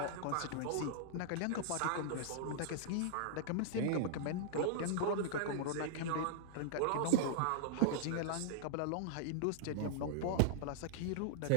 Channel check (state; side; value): different; both; correlation -0.01